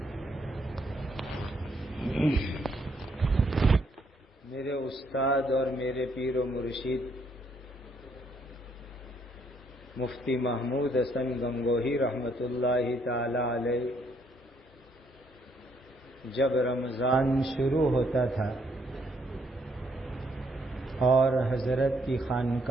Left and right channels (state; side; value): normal; both; correlation 0.71